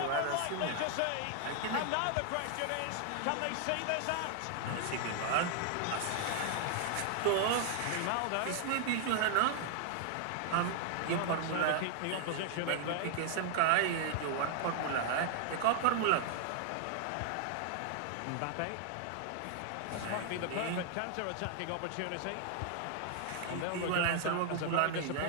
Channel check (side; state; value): both; different; correlation 0.00